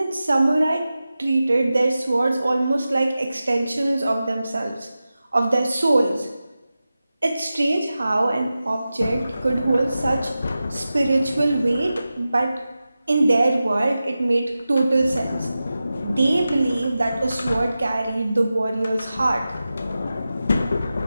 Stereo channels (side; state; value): both; inverted; correlation -0.94